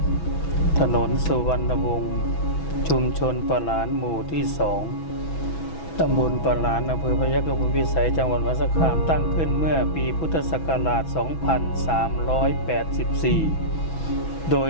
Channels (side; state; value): right; late; 6.1 ms